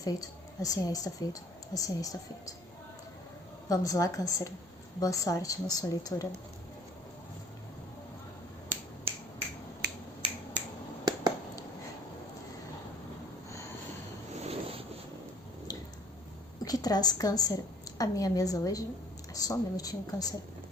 Assim é, está feito. Assim é, está feito. Vamos lá, Câncer. Boa sorte na sua leitura. O que traz, Câncer, a minha mesa hoje? Só um minutinho, Câncer.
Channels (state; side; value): normal; both; correlation 0.55